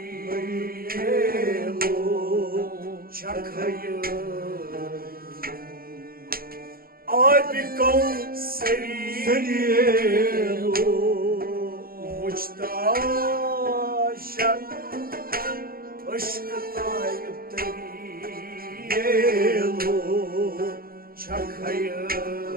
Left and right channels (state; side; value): late; left; 0.43 ms